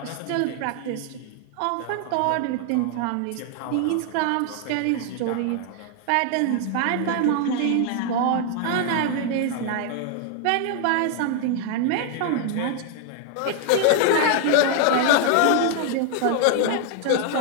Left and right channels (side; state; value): both; different; correlation 0.00